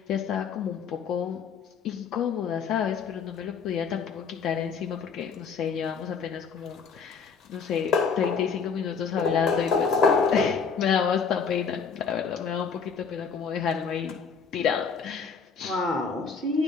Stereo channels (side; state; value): right; quieter; 5.9 dB